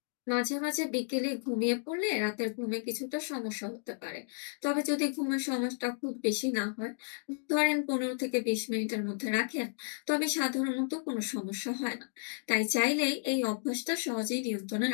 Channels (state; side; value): silent; right; digital silence